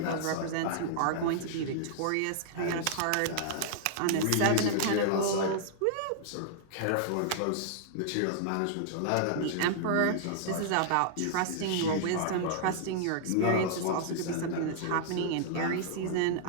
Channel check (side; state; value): both; different; correlation -0.01